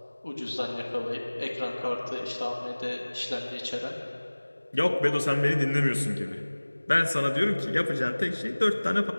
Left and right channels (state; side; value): inverted; both; correlation -1.00